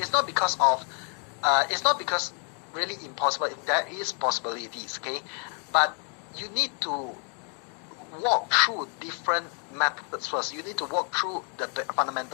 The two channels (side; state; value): right; quieter; 39.2 dB